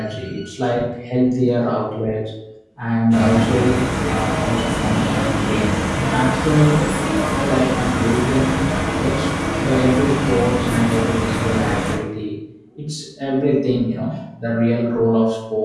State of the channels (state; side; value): identical; both; correlation 1.00